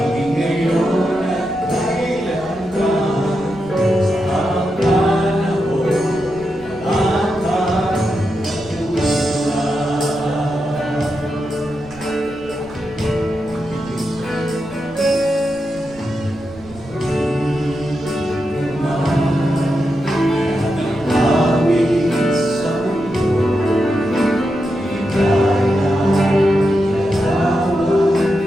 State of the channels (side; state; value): right; noise; rumble, 22 dB below the sound